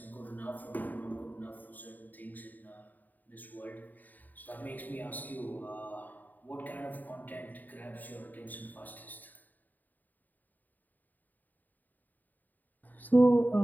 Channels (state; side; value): late; right; 0.086 ms